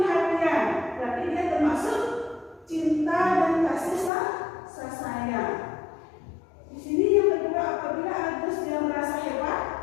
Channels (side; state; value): right; drops out; at 4.1 s